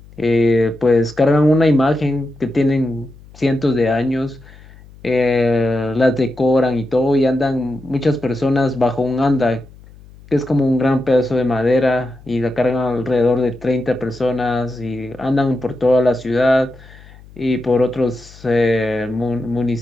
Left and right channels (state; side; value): noise; left; hum, 22 dB below the sound